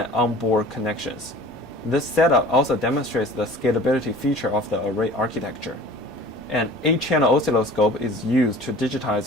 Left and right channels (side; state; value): both; normal; correlation 0.45